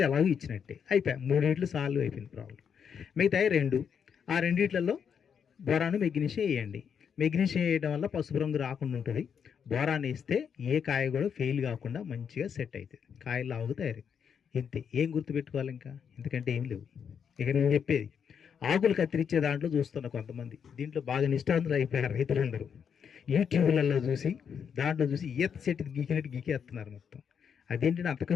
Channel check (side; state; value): right; quieter; 7.3 dB